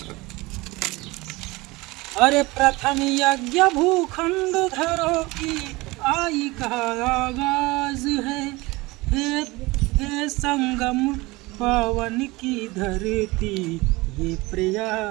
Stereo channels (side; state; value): left; quieter; 22.2 dB